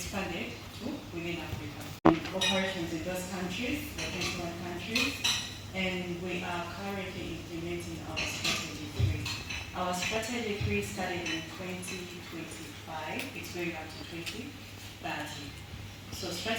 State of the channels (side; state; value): both; identical; correlation 1.00